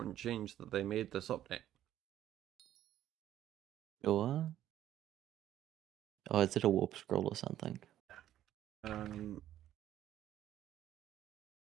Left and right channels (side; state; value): left; quieter; 12.1 dB